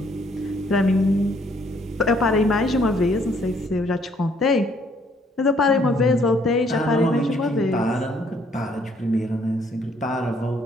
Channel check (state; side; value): normal; both; correlation 0.66